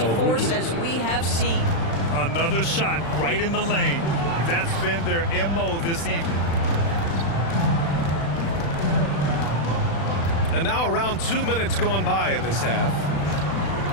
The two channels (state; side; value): late; right; 36 ms